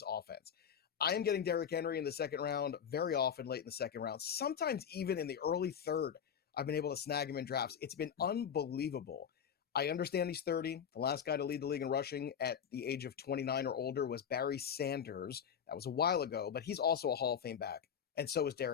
offense. I am getting Derrick Henry in the second round very often, late in the second round, sometimes even in the early third. I've been able to snag him in drafts. It's been unbelievable. I understand he's 30. The last guy to lead the league in rushing at the age of 29 or older was Barry Sanders. That was a while ago, but he's also a Hall of Fame back, and so is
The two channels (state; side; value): quieter; right; 7.9 dB